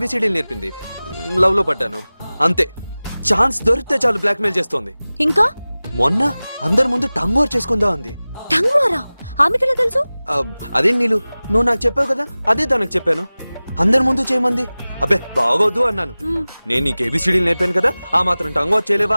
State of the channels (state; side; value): inverted; both; correlation -0.98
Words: నేర్పింది. లవ్ లో పడ్డాను అంతే. ఛాన్స్ దొరికితే చాలు బ్లాక్మెయిల్ చేస్తోంది. ఇంకా మొన్న అందరి ముందు టంగ్ వార్ చేసుకుందా ఉంది. టంగ్ వారా? ఆమెకెలా తెలుసు? అదే నీళ్ళు, నువ్వు నాకు చెప్పావు కదా, అదే తనకు చెప్పాను. అందరి ముందు చేయమంది. అబ్బే బాగోద్దు అన్నాను. నేను నీకు ఏబిసిడీలు నేర్పాను కదా, ఆ మాత్రం టంగ్ వార్ చేయలేవా